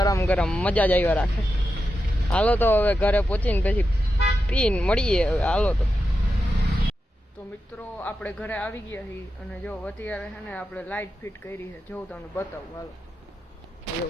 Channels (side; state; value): both; normal; correlation 0.89